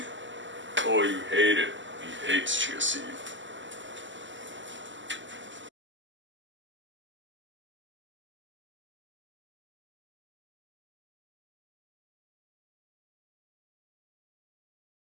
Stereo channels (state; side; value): late; left; 0.54 ms